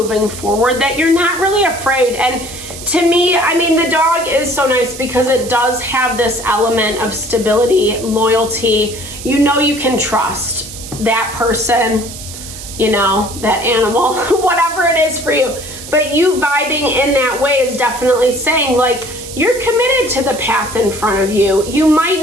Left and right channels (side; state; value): right; noise; hiss, 12 dB below the sound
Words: forward, that you're not really afraid. And to me, the dog is so nice because it does have this element of stability, loyalty. You can trust that person, that animal, whatever it is for you. But you vibing in that way is definitely saying, like, you're committed to the path in front of you. You